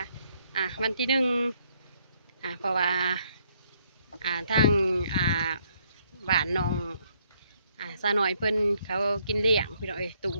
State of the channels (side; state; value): both; inverted; correlation -0.70